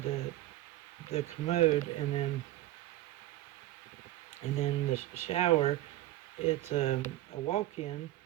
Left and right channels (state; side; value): quieter; left; 15.4 dB